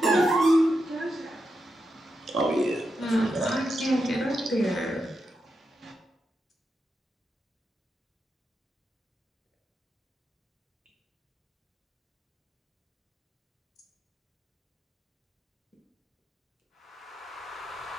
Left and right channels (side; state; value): both; normal; correlation 0.86